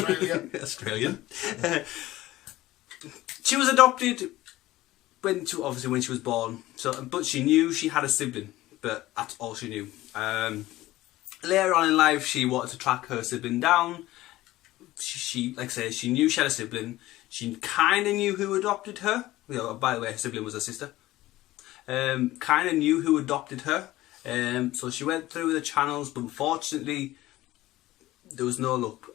Australian. She was adopted when she was born. But she knew she had a sibling, but that's all she knew. Later on in life, she wanted to track her sibling down. She like I say, she knew she had a sibling. She kind of knew who adopted her. By the way, her sibling was her sister. Kind of knew who adopted her. So she went through the channels, but unfortunately, there was no luck.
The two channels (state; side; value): quieter; right; 16.7 dB